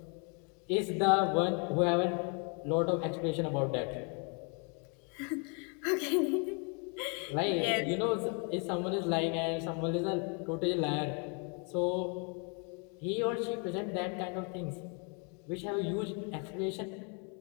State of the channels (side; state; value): right; quieter; 36.7 dB